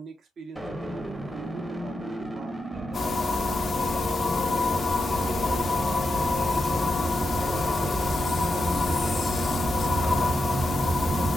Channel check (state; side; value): normal; both; correlation 0.87